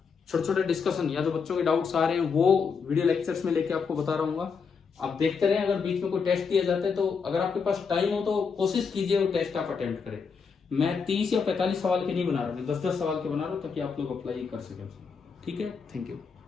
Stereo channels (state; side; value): quieter; right; 5.7 dB